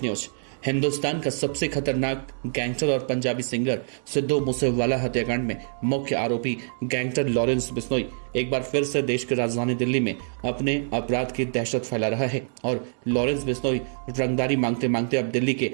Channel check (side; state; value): left; silent; digital silence